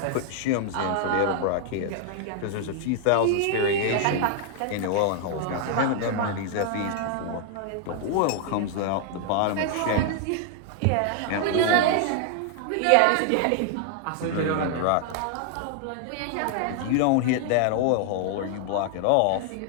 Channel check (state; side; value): different; both; correlation 0.00